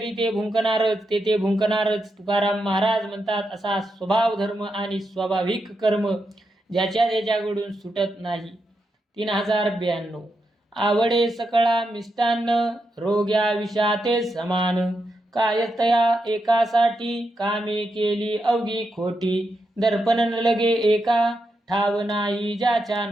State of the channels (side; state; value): both; normal; correlation 0.85